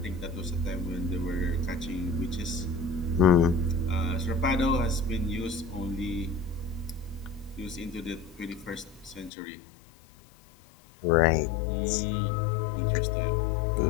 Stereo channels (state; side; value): drops out; right; at 9.3 s